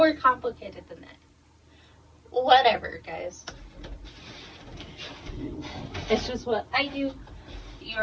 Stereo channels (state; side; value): identical; both; correlation 1.00